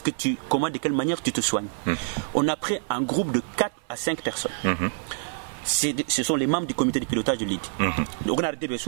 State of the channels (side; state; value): left; silent; 56 dB below the other